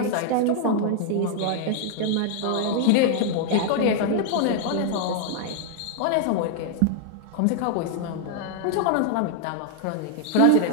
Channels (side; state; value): both; different; correlation 0.00